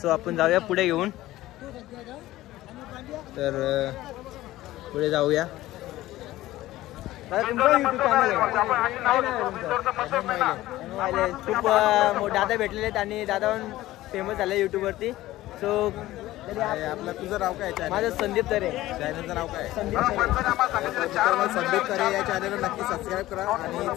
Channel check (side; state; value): right; quieter; 16.1 dB